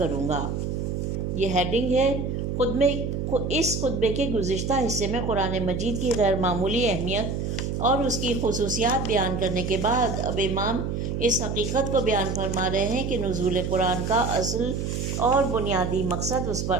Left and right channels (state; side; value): noise; right; hum, 2 dB below the sound